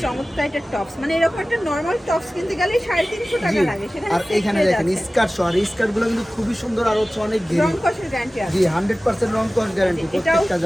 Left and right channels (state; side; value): normal; both; correlation 0.97